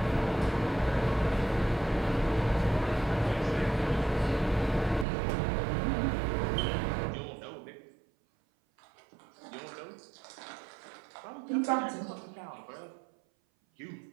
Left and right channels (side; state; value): left; drops out; at 5.1 s